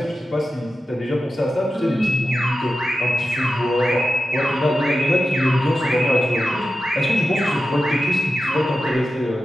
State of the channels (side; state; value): both; normal; correlation 0.92